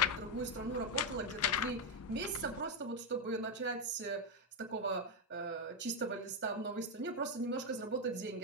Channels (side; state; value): both; normal; correlation 0.03